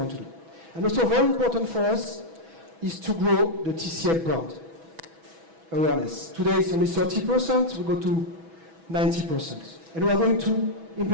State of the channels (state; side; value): late; left; 6.1 ms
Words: to do. And also very important for us is to grow the TCL brand awareness. Today it's only 30%, we go to 90%. And we are going to